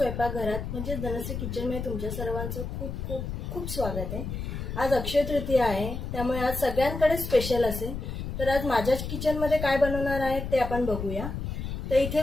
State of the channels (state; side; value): noise; left; rumble, 5 dB below the sound